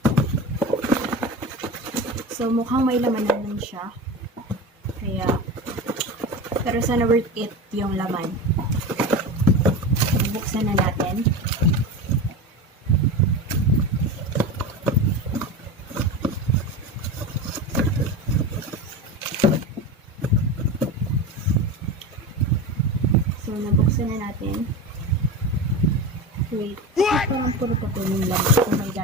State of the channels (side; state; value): both; normal; correlation 0.26